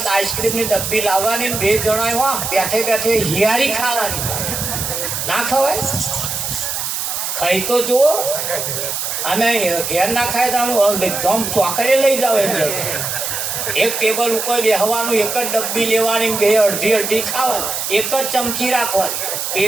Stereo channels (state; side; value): noise; right; hiss, 3 dB below the sound